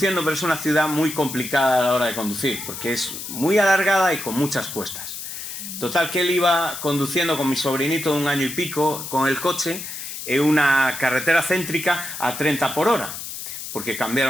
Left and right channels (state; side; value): noise; left; hiss, 8 dB below the sound